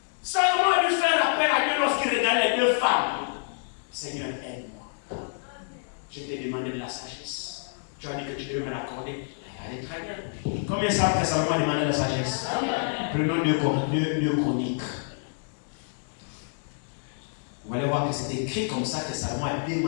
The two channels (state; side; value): silent; right; digital silence